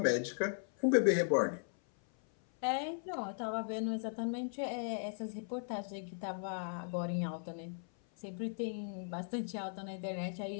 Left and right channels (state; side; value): silent; right; 53 dB below the other